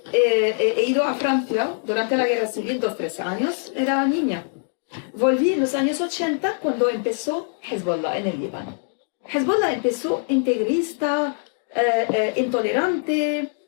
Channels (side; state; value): right; silent; 59 dB below the other